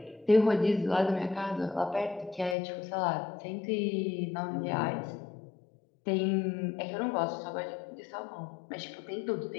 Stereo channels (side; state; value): right; drops out; at 2.6 s